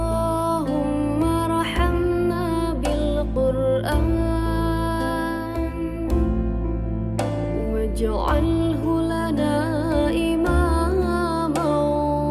ارحمنا بالقرآن واجعله لنا إماما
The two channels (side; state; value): both; identical; correlation 1.00